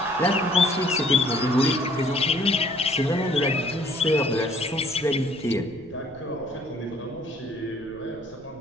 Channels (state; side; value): noise; right; rumble, 25 dB below the sound